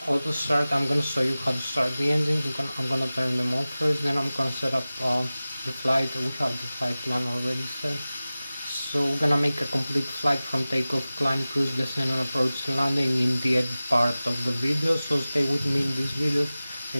auto start. I'm gonna show you how to start the engine. I'm gonna turn them on first, then I'm gonna set up the flight. We have the flight plan already set. So we're gonna make a complete flight from takeoff, climb, cruise, descent, and approach landing in the end part of the video. So stay with me in this video.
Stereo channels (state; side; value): inverted; both; correlation -0.97